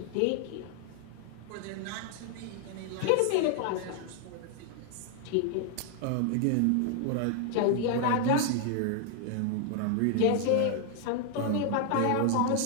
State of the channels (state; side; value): different; both; correlation 0.00